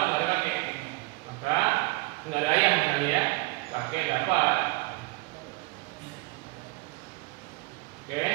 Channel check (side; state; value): left; quieter; 24.4 dB